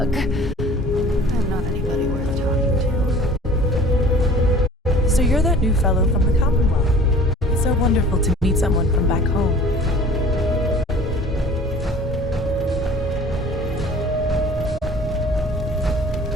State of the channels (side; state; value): both; normal; correlation 0.47